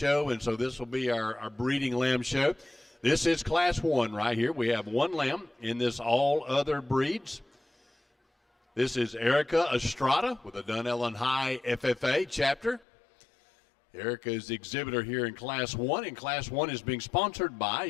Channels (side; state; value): right; drops out; at 12.9 s